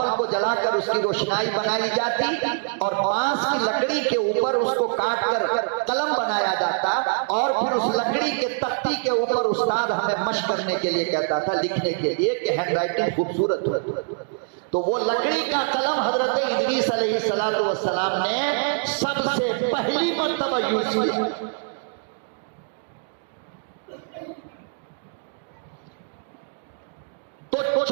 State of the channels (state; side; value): silent; left; 62 dB below the other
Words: को जलाकर उसकी रोशनाई बनाई जाती और बांस की लकड़ी के ऊपर उसको काट कर कलम बनाया जाता और फिर उस लकड़ी के तख्ती के ऊपर उस्ताद हमें मशक करने के लिए कहता था, लिखने के लिए कि हैंडराइटिंग खूबसूरत हो। तो वो लकड़ी का कलम हजरत इदरीस अलैहिस्सलातु वस्सलाम ने सबसे पहली मर्तबा यूज किया। तो